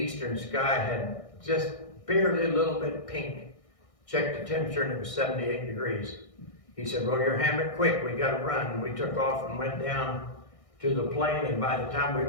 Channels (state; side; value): late; right; 1.6 ms